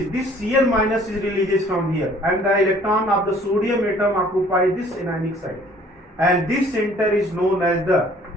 This Cl minus is releases from here, and the electron of the sodium atom occupies this anionic site. And this center is known as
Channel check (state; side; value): normal; both; correlation 0.56